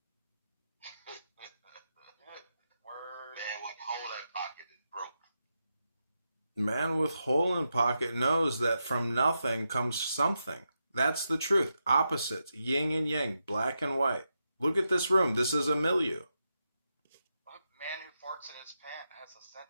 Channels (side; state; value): both; inverted; correlation -0.87